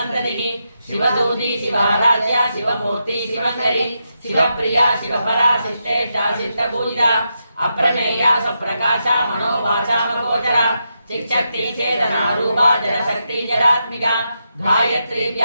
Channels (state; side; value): inverted; both; correlation -0.84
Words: శివదూతి శివారాధ్య శివమూర్తి శివకరి శివప్రియ శివపరా శిష్టేష్ట శిష్టపూజిత అప్రమేయ సప్రకాశ మనోవాచామగోచర చిక్శక్తి చేతన రూప జలశక్తి జలాత్మిక గాయత్రి